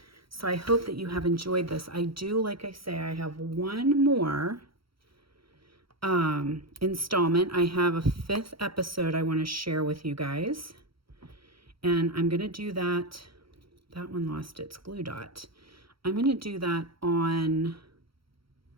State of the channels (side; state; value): left; late; 0.75 ms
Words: So I hope that you have enjoyed this. I do, like I say, I have one more installment. I have a 5th episode I want to share with you guys. And I'm going to do that. That one lost its glue dot. I'm going to do that on